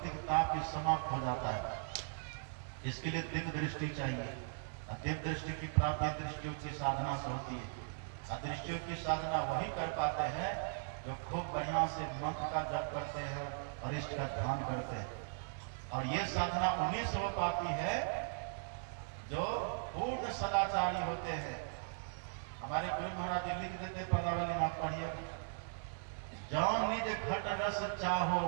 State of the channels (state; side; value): silent; left; 52 dB below the other